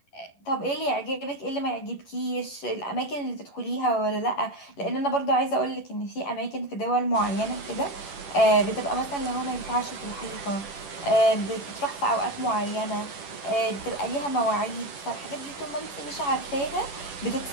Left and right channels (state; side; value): late; right; 10 ms